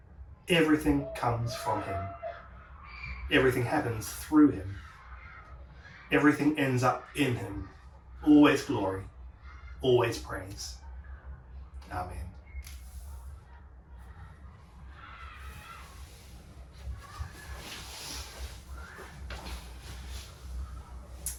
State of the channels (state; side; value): identical; both; correlation 1.00